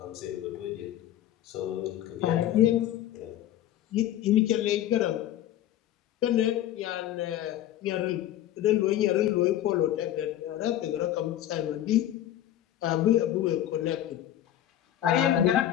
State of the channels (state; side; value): quieter; right; 12.3 dB